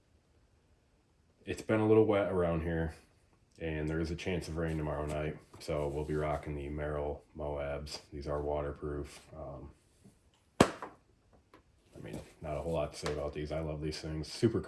it's been a little wet around here, and there is a chance of rain tomorrow night, so we'll be rocking the Merrell Moabs. These are waterproof. I mean, not a whole lot to say about these. I love these things. Super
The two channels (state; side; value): identical; both; correlation 1.00